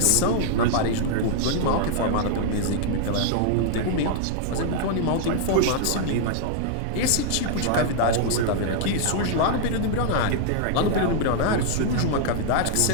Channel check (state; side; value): different; both; correlation -0.01